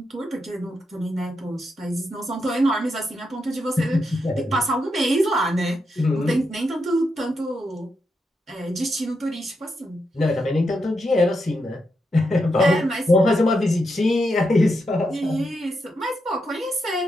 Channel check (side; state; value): both; normal; correlation 0.84